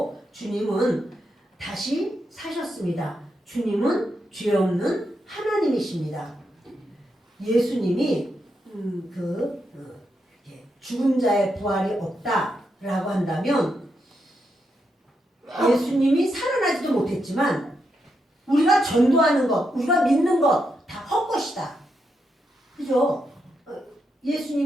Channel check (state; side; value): normal; both; correlation 0.83